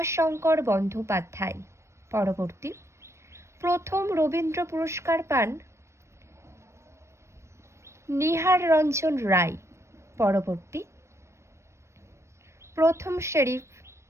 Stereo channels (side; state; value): left; late; 0.13 ms